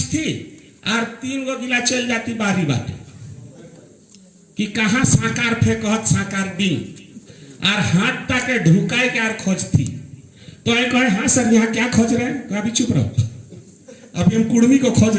और 3 गो गिला चल जाती बारी बाटे कि कहाँ साकार फेंकत साकार दिन और हाथ ताके ढुकाए के और खोजती। तो ये कहे हाँ सर यहाँ क्या खोज रहे हैं? अभी चुप रहो, अभी हम कुर्मी को खोज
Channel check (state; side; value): identical; both; correlation 1.00